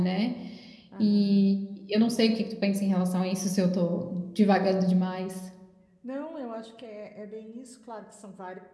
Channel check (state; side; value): identical; both; correlation 1.00